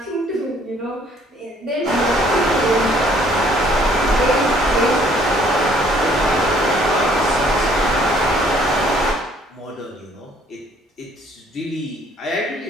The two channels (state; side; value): normal; both; correlation 0.61